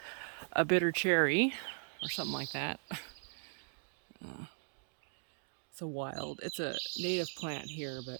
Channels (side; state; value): left; silent; 52 dB below the other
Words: cherry or something like that. It's a native plant here,